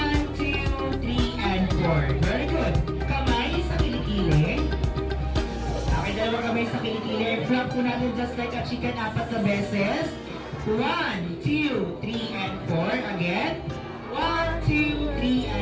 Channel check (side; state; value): both; identical; correlation 1.00